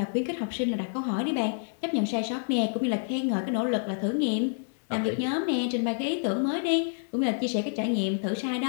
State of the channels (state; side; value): silent; right; digital silence